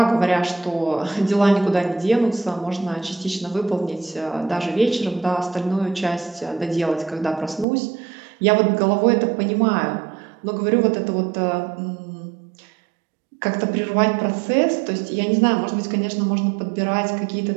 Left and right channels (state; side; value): drops out; left; at 7.7 s